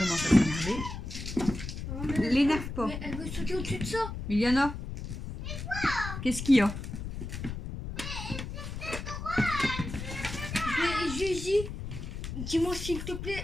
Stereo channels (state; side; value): noise; left; rumble, 7 dB below the sound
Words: à s'énerver. L'énerve pas. Mais elle veut sauter au-dessus de ça. Miliana, qu'est-ce qu'il y a? Je lui ai dit, dis-moi s'il te plaît.